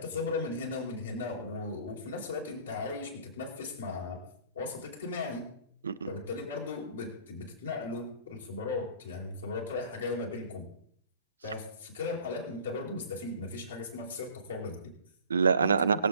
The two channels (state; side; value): inverted; both; correlation -0.50